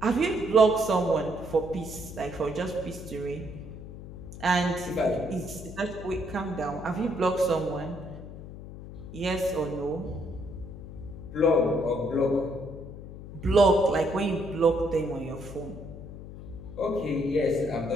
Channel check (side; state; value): left; noise; hum, 13 dB below the sound